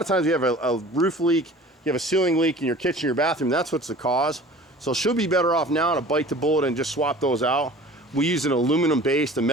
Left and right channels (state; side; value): normal; both; correlation 0.44